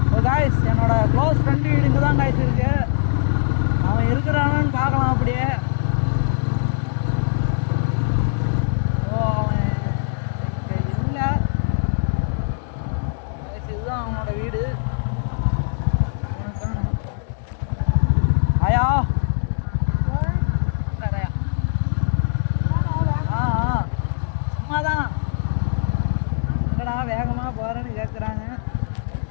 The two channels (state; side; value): silent; right; digital silence